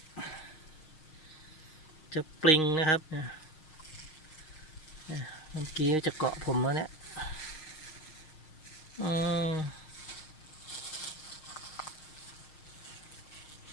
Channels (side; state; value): right; late; 6.4 ms